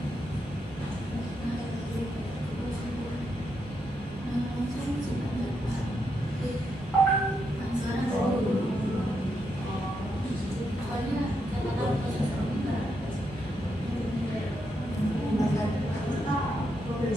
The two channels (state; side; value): normal; both; correlation 0.81